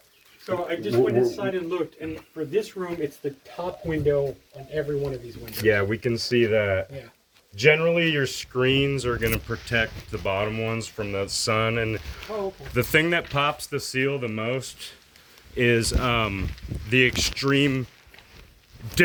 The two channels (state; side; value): identical; both; correlation 1.00